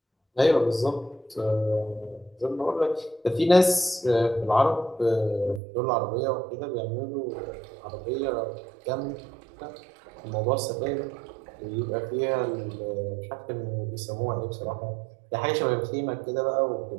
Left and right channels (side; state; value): left; drops out; at 5.6 s